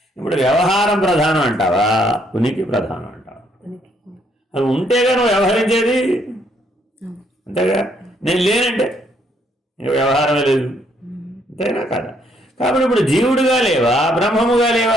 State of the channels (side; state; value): both; normal; correlation 0.70